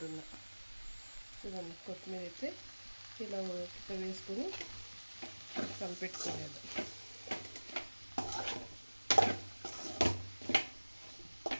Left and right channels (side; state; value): both; inverted; correlation -1.00